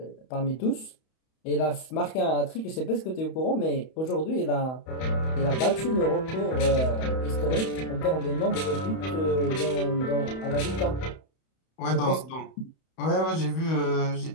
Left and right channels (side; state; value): right; late; 31 ms